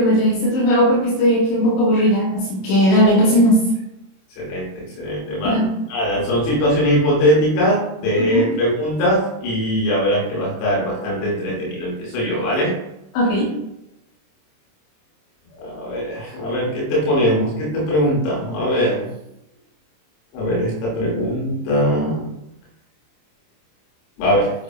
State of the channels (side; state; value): right; late; 26 ms